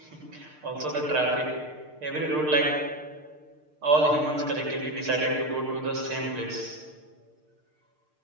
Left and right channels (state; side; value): late; left; 6.6 ms